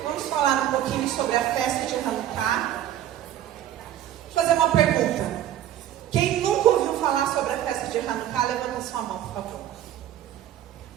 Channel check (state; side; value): quieter; left; 11.8 dB